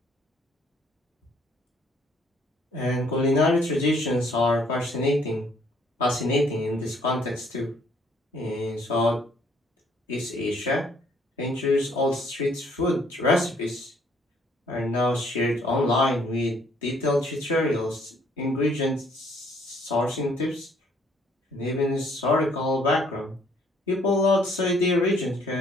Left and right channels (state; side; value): normal; both; correlation 0.63